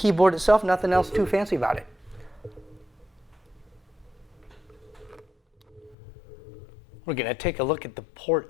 itself. Nothing else too fancy about it. We're going to take a look at the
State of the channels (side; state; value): right; drops out; at 6.0 s